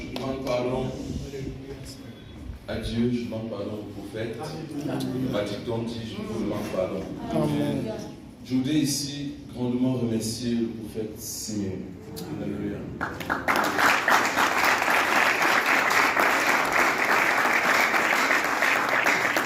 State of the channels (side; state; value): both; identical; correlation 1.00